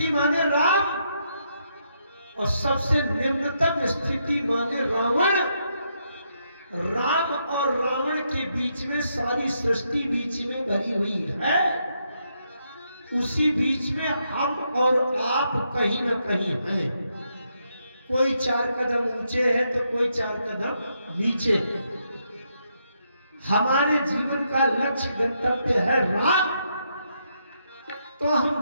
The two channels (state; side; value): inverted; both; correlation -0.78